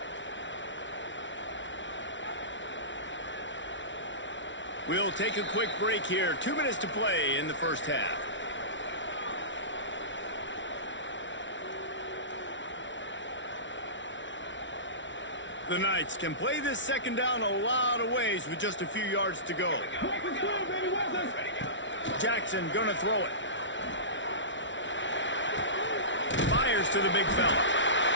We'll take a quick break here. 2 minutes to play in the first half. The Knights can play this second down a lot of ways with just a few yards to go. Jackson gonna throw it. Fires to the big fella.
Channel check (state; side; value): late; right; 0.55 ms